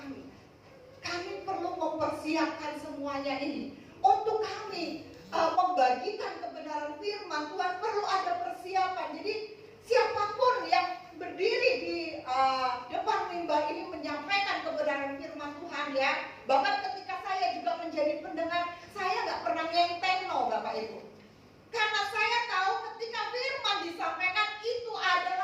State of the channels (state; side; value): identical; both; correlation 1.00